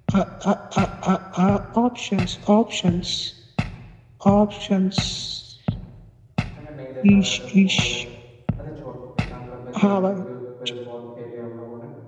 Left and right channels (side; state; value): both; identical; correlation 1.00